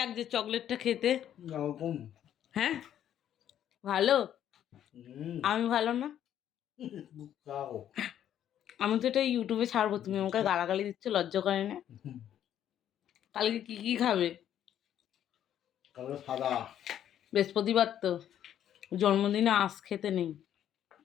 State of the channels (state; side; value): quieter; right; 10.5 dB